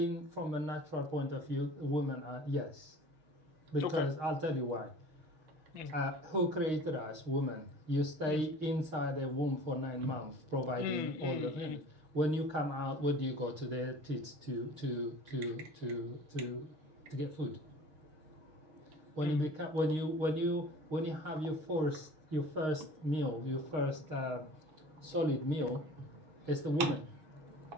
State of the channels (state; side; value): late; left; 6.5 ms